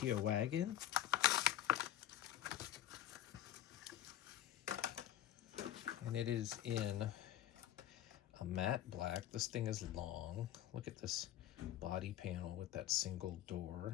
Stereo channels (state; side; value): quieter; right; 12.3 dB